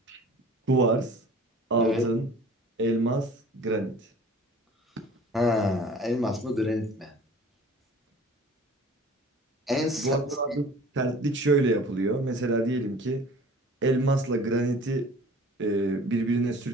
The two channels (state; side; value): normal; both; correlation 0.46